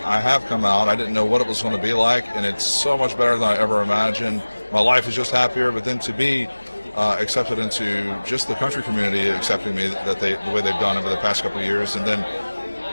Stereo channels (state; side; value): inverted; both; correlation -1.00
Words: I have come out, I didn't know what it was going to be like, and it's so much better than I ever imagined. My life is just happier, but then to be accepted into just the country community accepting me the way they've done over the past couple of years, and then